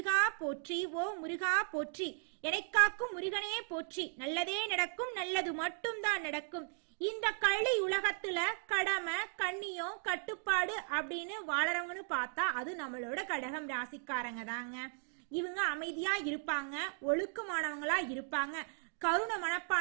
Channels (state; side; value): silent; left; 53 dB below the other